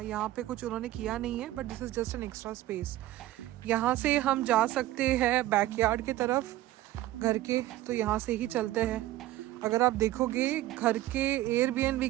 यहाँ पे कुछ उन्होंने किया नहीं है, but this is just an extra space. यहाँ से हम जा सकते हैं बैकयार्ड के तरफ घर के, तो यहाँ से ही चलते हैं। अगर आप देखोगे घर के एयरबीएनबी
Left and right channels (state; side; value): quieter; left; 15.2 dB